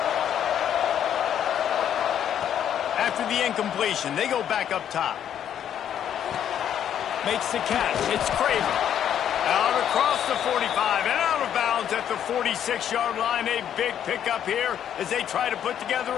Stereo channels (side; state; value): right; quieter; 9.7 dB